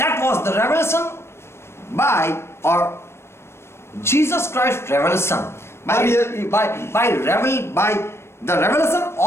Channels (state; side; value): late; right; 0.12 ms